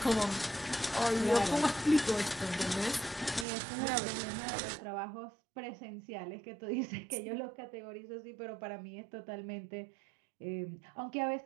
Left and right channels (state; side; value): drops out; left; at 3.5 s